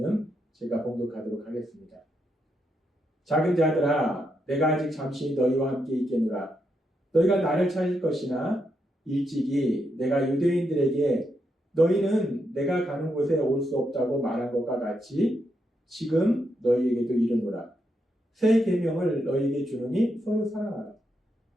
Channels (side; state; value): both; normal; correlation 0.81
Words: 제가 봉독하도록 하겠습니다. 작은 자들아, 내가 아직 잠시 너희와 함께 있겠노라. 너희가 나를 찾을 것이나 일찍이 내가 유대인들에게 너희는 내가 가는 곳에 올 수 없다고 말한 것과 같이 지금 너희에게도 이르노라. 새 계명을 너희에게 주노니 서로 사랑하라.